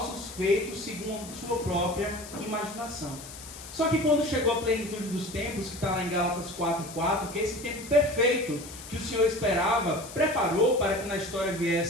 feitos segundo sua própria imaginação. Só que quando chegou a plenitude dos tempos, que está lá em Gálatas 4:4, que é esse tempo perfeito que o Senhor esperava, preparou para que na história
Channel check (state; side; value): noise; left; hiss, 14 dB below the sound